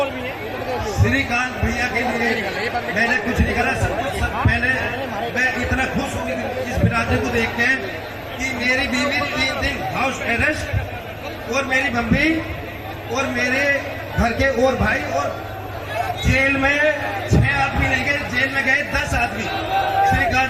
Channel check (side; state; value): both; identical; correlation 1.00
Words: श्रीकांत भैया के लिए मैंने कुछ नहीं करा। पहले मैं इतना खुश हूँ इस बिरादरी को देख के कि मेरी बीवी 3 दिन हाउस अरेस्ट, और मेरी मम्मी और मेरे घर के और भाई, और जेल में 6 आदमी नहीं गए, जेल में गए 10 आदमी। श्रीकांत